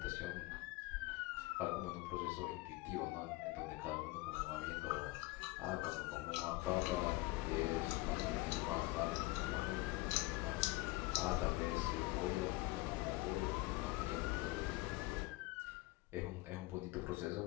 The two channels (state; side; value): quieter; right; 21.2 dB